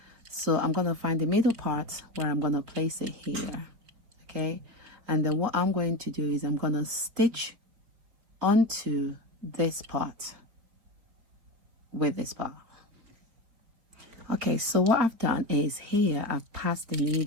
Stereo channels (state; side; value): late; left; 4.3 ms